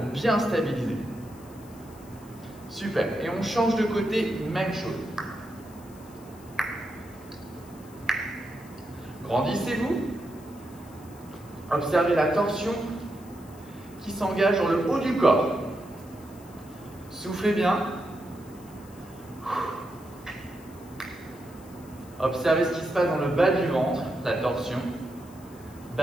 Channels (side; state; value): left; noise; hiss, 24 dB below the sound